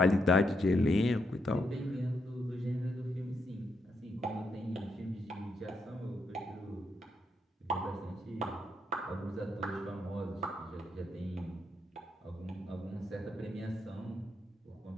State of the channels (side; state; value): both; normal; correlation 0.79